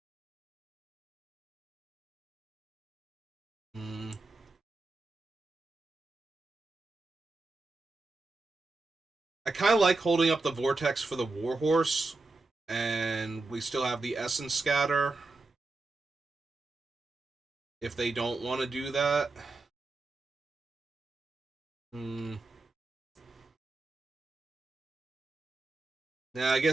kind of like holding up the Vortex for the Warhorse, and we still have the Essence Scatter if they don't want to do that. Yeah, I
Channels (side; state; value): left; quieter; 3.4 dB